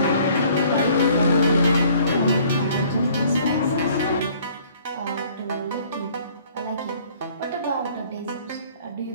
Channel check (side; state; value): both; inverted; correlation -0.57